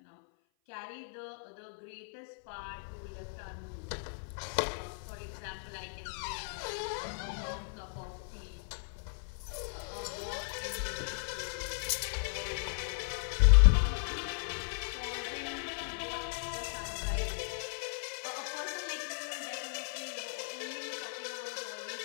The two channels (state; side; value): silent; right; 54 dB below the other